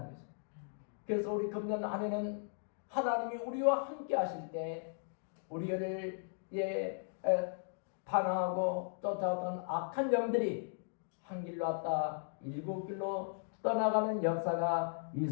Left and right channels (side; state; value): right; silent; digital silence